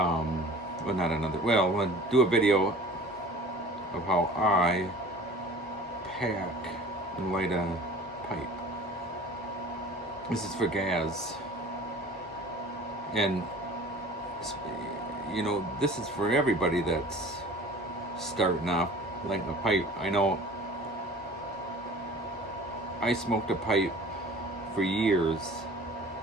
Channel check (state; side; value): normal; both; correlation 0.44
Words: not another, well, I'll do a video of how I pack and light a pipe. This is for gas. And you know, this is for everybody that's starting off lighting a pipe. I know I smoked a pipe for years,